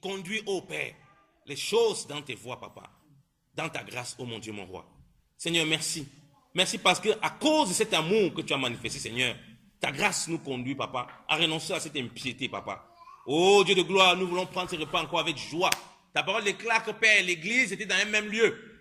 ô Père, les choses dans tes voies, Papa. Dans ta grâce, ô mon Dieu, mon roi. Seigneur, merci. Merci parce que à cause de cet amour que tu as manifesté, Seigneur, ta grâce nous conduit, Papa, à renoncer à cette impiété, Papa. Oh Dieu de gloire, nous voulons prendre ce repas encore avec joie. Ta parole déclare que, Père, l'église était dans un même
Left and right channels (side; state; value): both; identical; correlation 1.00